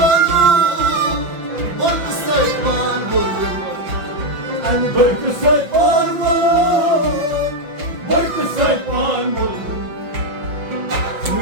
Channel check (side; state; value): left; late; 5.7 ms